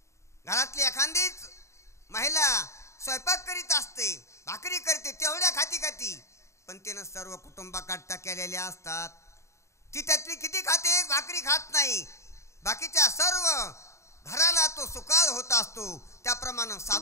घरातली एखादीच महिला स्वयंपाक करीत असते, भाकरी करते, तेवढ्या खाती पण तिनं सर्व कुटुंबाकरता केलेल्या असतात. ती त्यातली किती खाते, एक भाकरी खात नाही. बाकीच्या सर्व घराला तो सुकाळ होत असतो. त्याप्रमाणे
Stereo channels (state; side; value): late; right; 0.14 ms